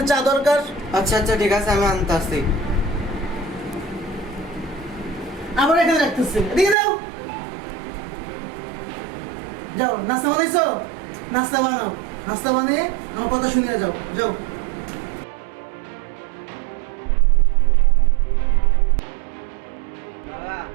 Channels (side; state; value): left; drops out; at 6.8 s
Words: চা দরকার। আচ্ছা ঠিক আছে আমি আনতেছি। আমার এখানে রাখতেছি, এদিকে দাও। যাও, নাস্তা বানাইছো? নাস্তা বানাও, নাস্তা বানিয়ে আমার কথা শুনিয়ে যাও। যাও। বাবা